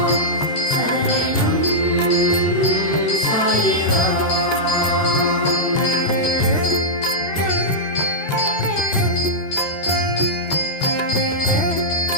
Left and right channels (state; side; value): late; right; 13 ms